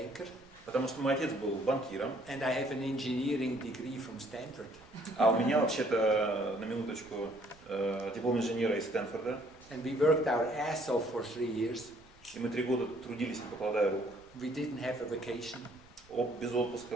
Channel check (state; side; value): noise; right; rumble, 27 dB below the sound